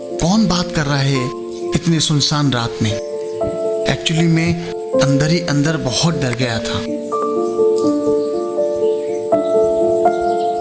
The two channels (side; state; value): both; identical; correlation 1.00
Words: कौन बात कर रहा है इतनी सुनसान रात में? एक्चुअली मैं अंदर ही अंदर बहुत डर गया था।